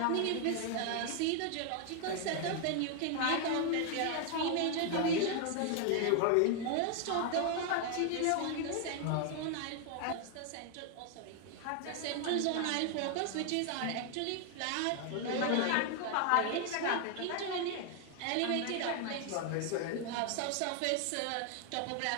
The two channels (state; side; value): different; both; correlation 0.00